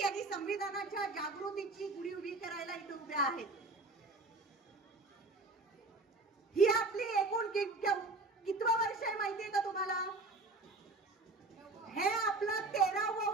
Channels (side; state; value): left; quieter; 3.3 dB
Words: आणि संविधानाच्या जागृतीची गुढी उभी करायला इथे उभ्या आहेत. ही आपली एकूण कितवं वर्ष आहे माहितीये का तुम्हाला? हे आपलं 13वं